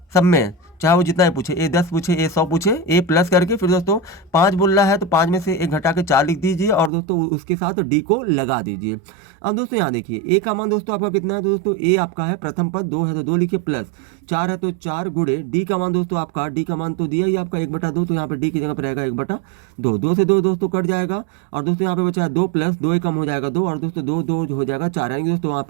सब में, चाहे वो जितना ही पूछे, A10 पूछे, A100 पूछे, A+ करके फिर दोस्तों 5 बोल रहा है तो 5 में से 1 घटा के 4 लिख दीजिए और दोस्तों उसके साथ D को लगा दीजिए। अब दोस्तों यहाँ देखिए A का मान दोस्तों आपका कितना है, तो दोस्तों A आपका है प्रथम पद 2 है तो 2 लिखिए, प्लस 4 है तो 4 गुणे D का मान दोस्तों आपका, D का मान तो दिया ही आपका 1/2, तो यहाँ पर D की जगह पर रहेगा 1/2। 2 से 2 दोस्तों कट जाएगा और दोस्तों यहाँ पे बचा 2 प्लस 2 कम हो जाएगा 2 और दोस्तों 2 हो जाएगा 4, यानी दोस्तों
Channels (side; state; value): left; drops out; at 6.9 s